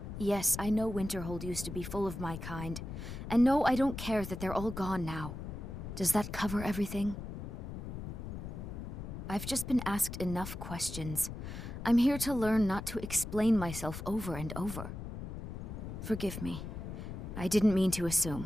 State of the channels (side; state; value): left; noise; rumble, 8 dB below the sound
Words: Yes, I know Winterhold used to be full of my kind, and no, I don't care that they're all gone now. Does that cover everything? I've just been asked enough questions. I'm here to learn not to explain myself over and over. Forgive me. I didn't mean to